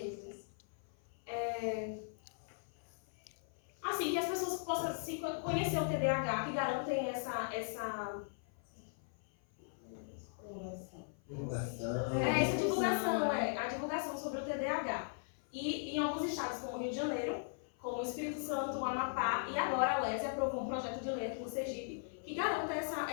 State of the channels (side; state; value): right; silent; 52 dB below the other